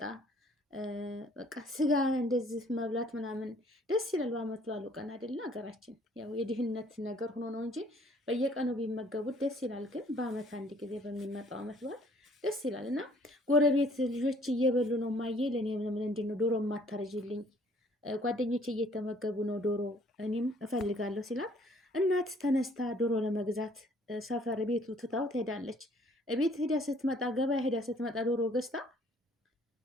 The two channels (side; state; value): both; normal; correlation 0.59